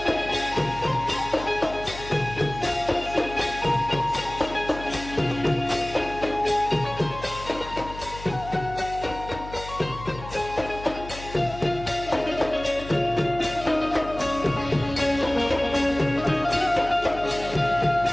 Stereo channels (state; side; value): noise; left; hum, 13 dB below the sound